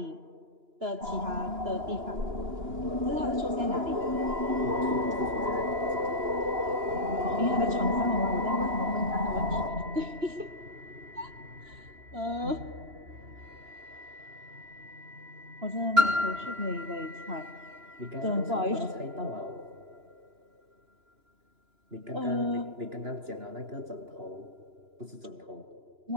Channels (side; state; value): left; late; 2.9 ms